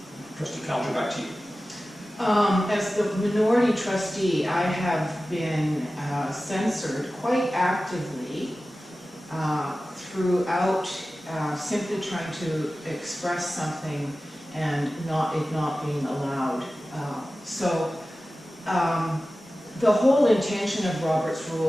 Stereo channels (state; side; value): normal; both; correlation 0.95